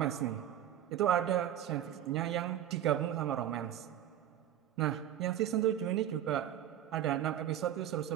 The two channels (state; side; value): quieter; left; 11.2 dB